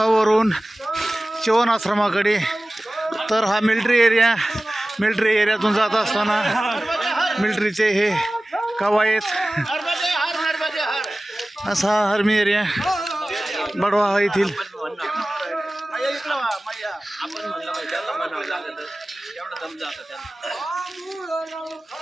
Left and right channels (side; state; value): both; normal; correlation 0.97